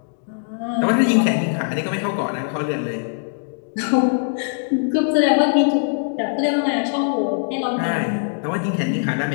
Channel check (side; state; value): right; silent; digital silence